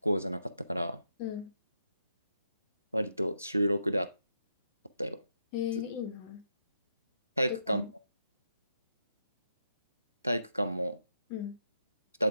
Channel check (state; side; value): inverted; both; correlation -0.82